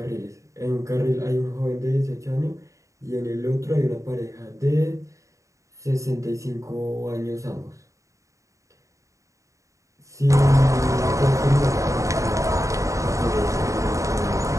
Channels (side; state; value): left; late; 0.15 ms